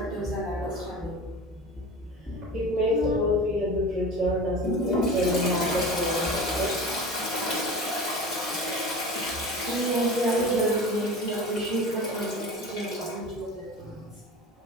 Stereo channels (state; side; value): normal; both; correlation 0.34